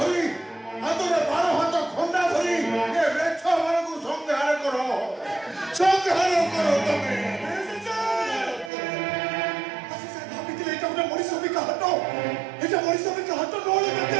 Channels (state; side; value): drops out; left; at 8.7 s